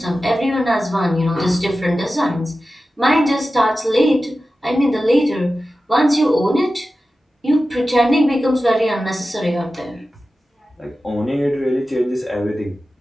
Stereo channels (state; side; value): normal; both; correlation 0.94